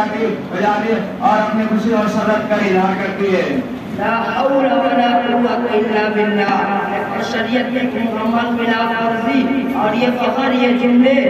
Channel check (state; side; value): identical; both; correlation 1.00